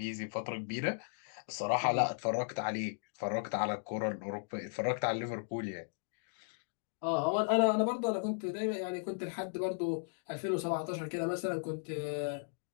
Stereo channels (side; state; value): right; silent; digital silence